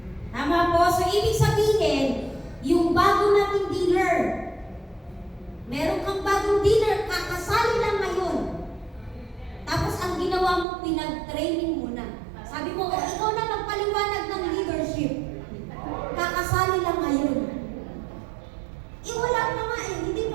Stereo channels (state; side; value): drops out; left; at 10.7 s